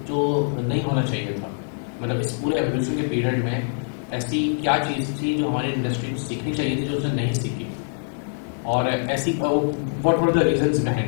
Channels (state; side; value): silent; right; 63 dB below the other